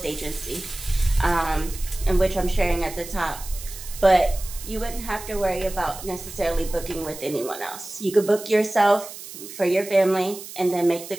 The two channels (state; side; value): noise; right; hiss, 13 dB below the sound